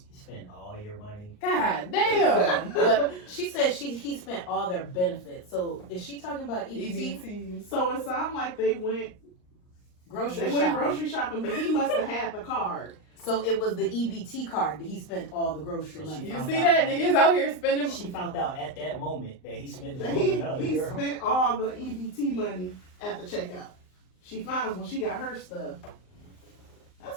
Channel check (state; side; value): late; right; 39 ms